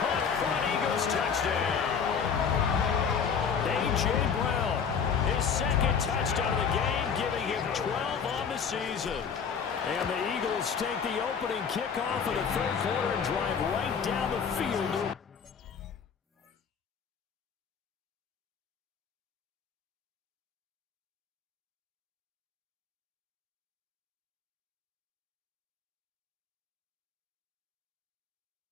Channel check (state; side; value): quieter; right; 6.6 dB